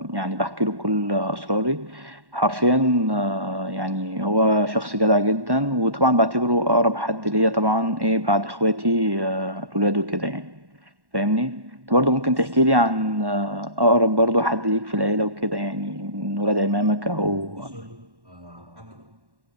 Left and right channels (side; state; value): left; late; 1.1 ms